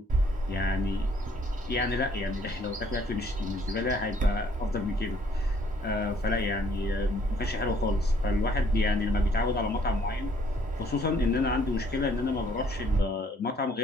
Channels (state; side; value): normal; both; correlation 0.63